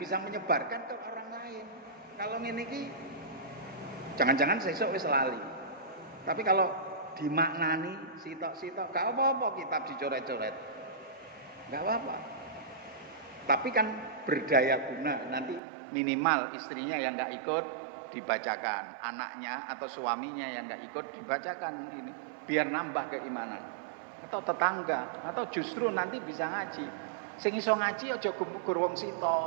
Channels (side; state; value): left; drops out; at 15.6 s